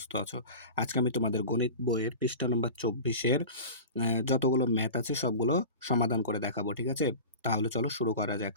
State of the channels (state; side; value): inverted; both; correlation -0.33